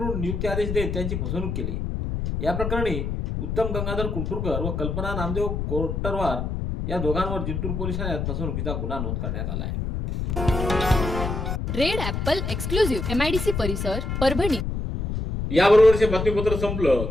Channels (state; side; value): noise; left; rumble, 3 dB below the sound